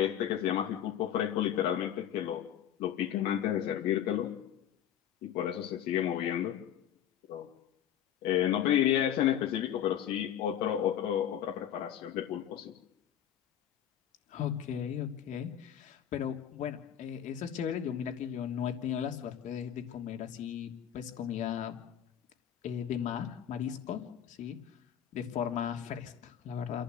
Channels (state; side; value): quieter; right; 10.1 dB